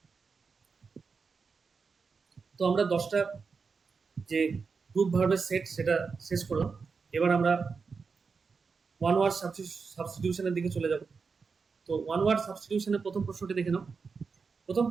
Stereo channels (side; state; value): left; quieter; 5.1 dB